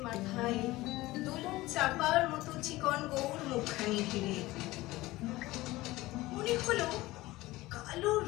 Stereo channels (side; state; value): right; quieter; 18.7 dB